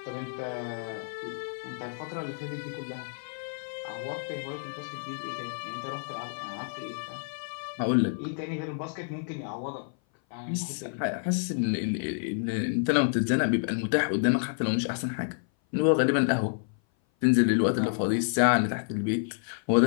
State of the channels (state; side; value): silent; right; 56 dB below the other